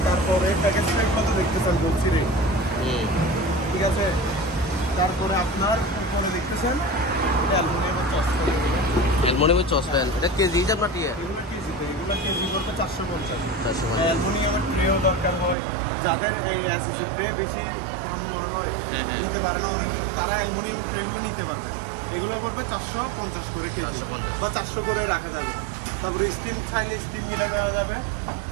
তারপরে প্যাকেজ ট্যাগ কত দেখতেছেন বলছি রে, ঠিক আছে। তারপরে আপনার উপরে দেখতেছেন অ্যালুমিনিয়ামের চশমা, অ্যালুমিনিয়ামের চসপ্যান, এটা কেজি হিসাব না টিয়া? এগুলো কেজিতে, এগুলো কেজি করতে 450। 450। অ্যালুমিনিয়ামের ট্রেও দরকার হয়, যাদের অ্যাসেসের ট্রে বেশি নিতে পারে না অনেক, তারা অ্যালুমিনিয়ামের ট্রেগুলো নিতে পারবে। এগুলো পড়বে 450 করে কেজি 450 বা 400 করে রাখা যাবে। তারপরে স্টিল চাইলে স্টিল মিলে দেওয়া যাবে।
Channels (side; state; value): left; drops out; at 15.6 s